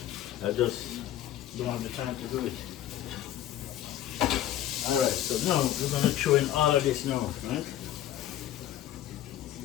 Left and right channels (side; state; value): right; quieter; 12.4 dB